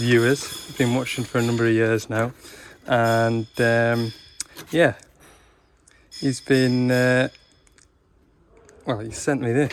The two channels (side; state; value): both; identical; correlation 1.00